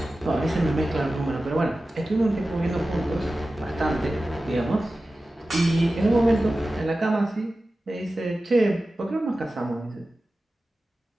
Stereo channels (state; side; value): normal; both; correlation 0.95